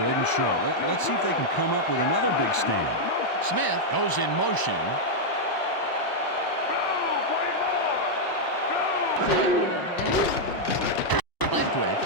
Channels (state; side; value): late; right; 1.0 ms